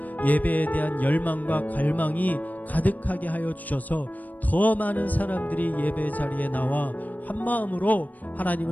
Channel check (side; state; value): right; late; 0.080 ms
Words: 예배에 대한 열망과 갈망이 가득하게 하여 주셔서 더 많은 사람들이 예배 자리에 나와 한 마음으로